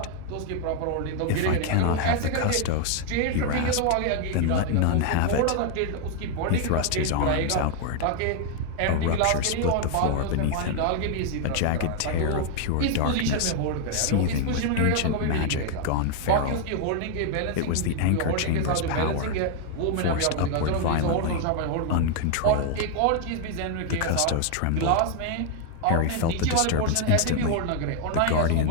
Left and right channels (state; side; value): different; both; correlation 0.01